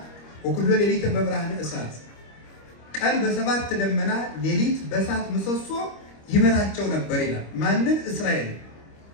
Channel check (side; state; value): right; late; 25 ms